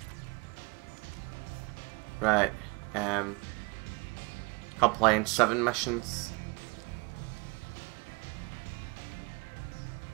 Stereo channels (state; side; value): quieter; left; 28.4 dB